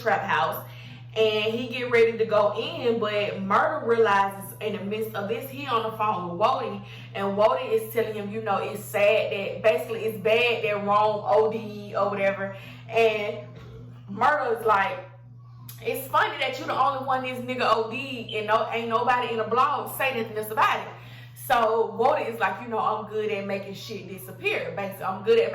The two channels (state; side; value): identical; both; correlation 1.00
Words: house. And he get ready to go in, but Murda realizes in the midst of this, he on the phone with Woody, and Woody is telling him, you know, it's sad that, basically it's bad that Rome OD or whatever. And Murda is like, it's funny that you're the only one this nigga OD and ain't nobody in the blog say nothing else about it. So Woody is like, you know, I'm good at making shit disappear. Basically, I'm good at